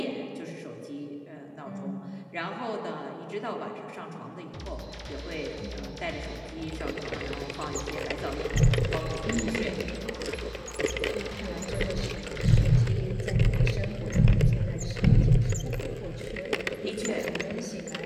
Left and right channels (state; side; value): identical; both; correlation 1.00